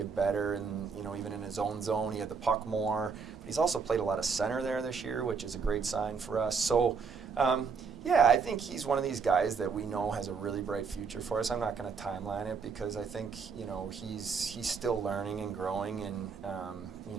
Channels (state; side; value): quieter; left; 5.5 dB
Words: better, and even in his own zone, he had the puck more. But he's also played a lot of center there this year, which is a great sign for us. So, I think he's one of these guys that we know has a really bright future for us. I'm not going to timeline it because I think he's still learning and growing, and